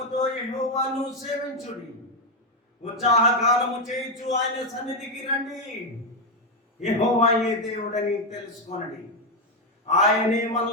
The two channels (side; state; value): both; normal; correlation 0.06